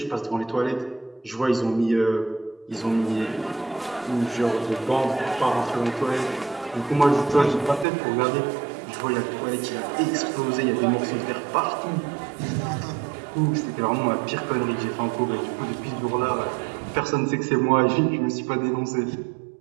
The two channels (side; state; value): left; drops out; at 7.9 s